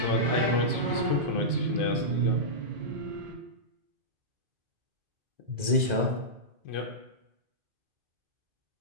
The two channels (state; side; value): late; left; 2.0 ms